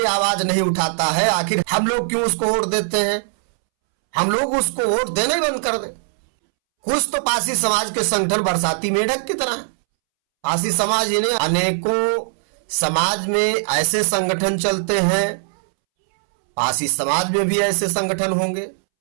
आवाज नहीं उठाता है, आखिर हम लोग क्यों उसको वोट देते हैं? हम लोग उसको वोट देना ही बंद कर दें। कुछ तो पासी समाज के संगठन बरसाती मेढक की तरह है। पासी समाज इन्हें अनेकों समाज में ऐसे संगठन चलते हैं, पासी समाज में भी ऐसे संगठन होंगे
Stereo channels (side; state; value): left; silent; 66 dB below the other